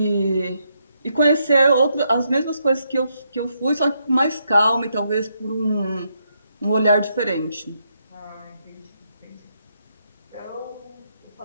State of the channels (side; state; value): both; inverted; correlation -0.78